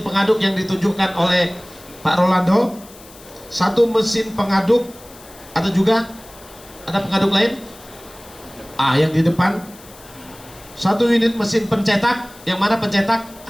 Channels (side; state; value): left; noise; hiss, 21 dB below the sound